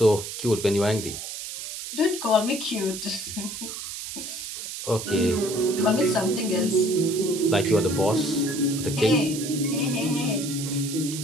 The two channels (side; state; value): right; noise; hiss, 8 dB below the sound